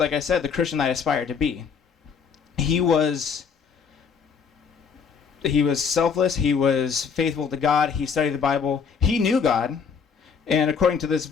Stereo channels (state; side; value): quieter; right; 6.3 dB